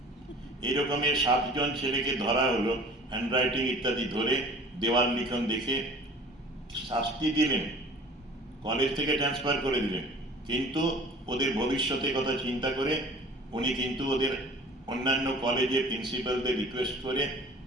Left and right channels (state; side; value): normal; both; correlation 0.46